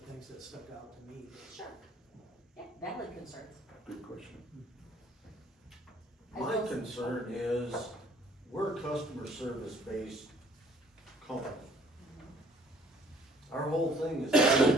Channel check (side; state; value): both; normal; correlation 0.58